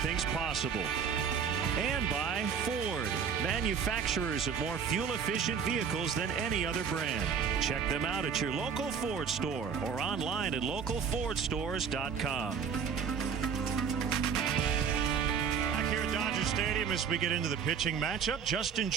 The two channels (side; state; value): left; quieter; 6.8 dB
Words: possible. And by Ford, manufacturers of more fuel-efficient vehicles than any other brand. Check them out at your local Ford store or online at localfordstores.com. Dodger Stadium as we get into the pitching matchup. Justin